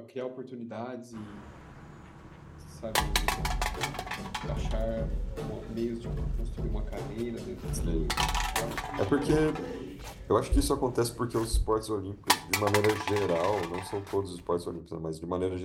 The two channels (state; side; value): identical; both; correlation 1.00